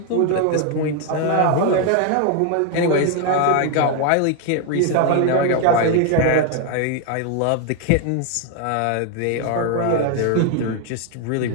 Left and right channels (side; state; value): both; different; correlation 0.01